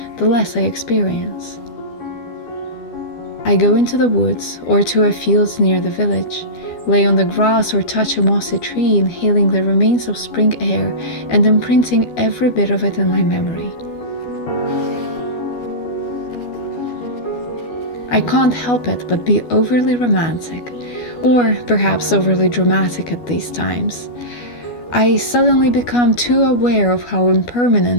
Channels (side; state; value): right; late; 12 ms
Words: the less I experience. I go into the woods or to a field near the village, lay on the grass or touch a mossy tree, inhaling the remains of spring air and imprinting every bit of it in my memory. I can't help it but be overly romantic, or perhaps overly dramatic at these times. I suddenly become too aware of how